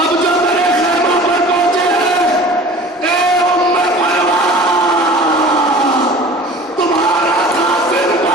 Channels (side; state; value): both; normal; correlation 0.42